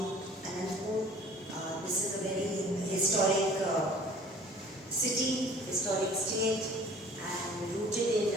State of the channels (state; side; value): normal; both; correlation 0.49